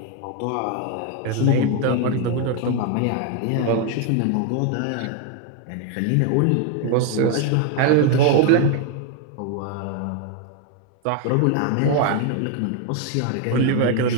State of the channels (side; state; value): both; different; correlation 0.01